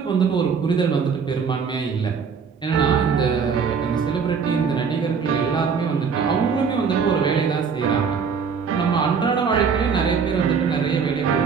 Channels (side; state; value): left; quieter; 6.0 dB